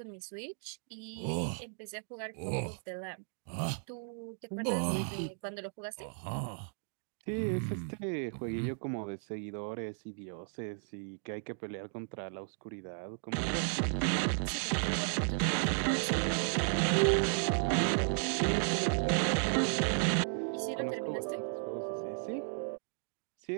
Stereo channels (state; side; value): silent; left; digital silence